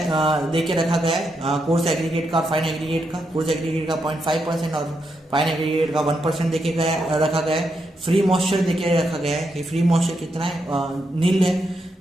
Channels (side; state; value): both; normal; correlation 0.82